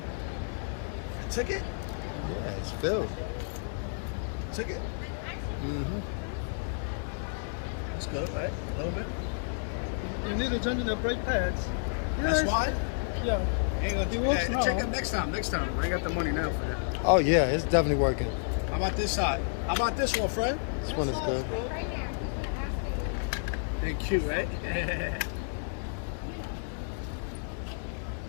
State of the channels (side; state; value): right; silent; 57 dB below the other